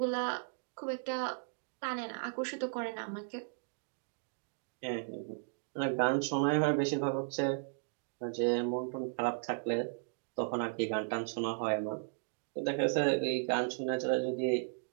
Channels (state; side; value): silent; left; digital silence